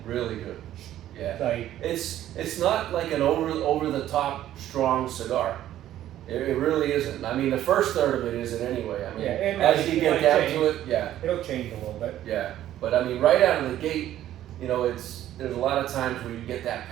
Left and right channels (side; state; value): left; quieter; 12.6 dB